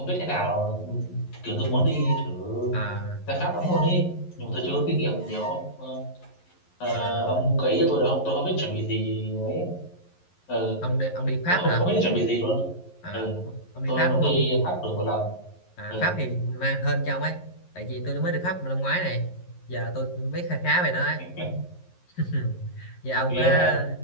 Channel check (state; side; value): late; right; 11 ms